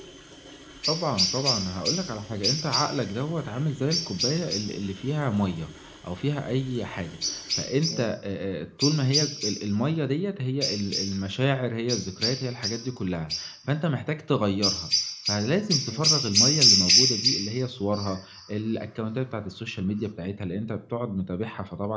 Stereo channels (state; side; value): identical; both; correlation 1.00